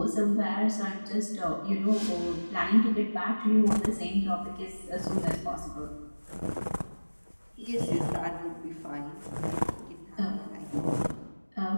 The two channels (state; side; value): inverted; both; correlation -1.00